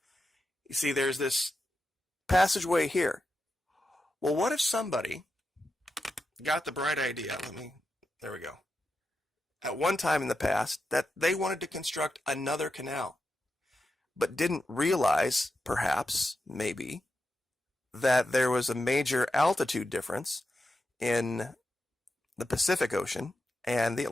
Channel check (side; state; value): both; normal; correlation 0.88